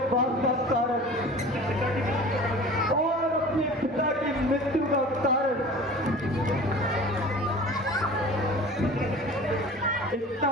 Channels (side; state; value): both; normal; correlation 0.41